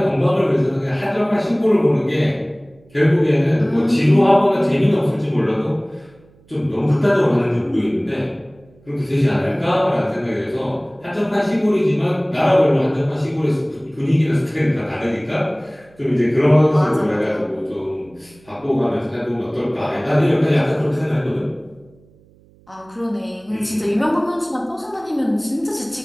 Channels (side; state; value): right; noise; hum, 29 dB below the sound